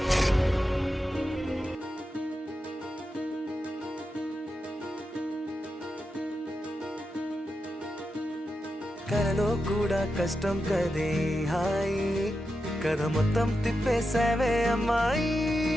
కలలో కూడా కష్టం కదే హాయి కథ మొత్తం తిప్పేసావే అమ్మాయి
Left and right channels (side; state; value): both; normal; correlation 0.89